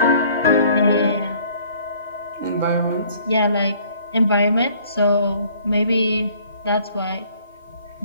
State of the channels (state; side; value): inverted; both; correlation -0.58